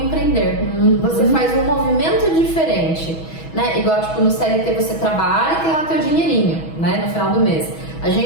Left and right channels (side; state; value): right; late; 6.2 ms